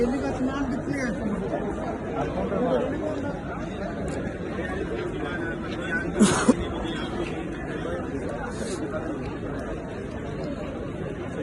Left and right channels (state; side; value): identical; both; correlation 1.00